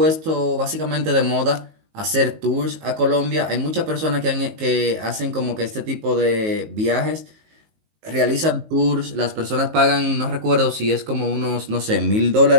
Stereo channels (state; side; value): late; left; 19 ms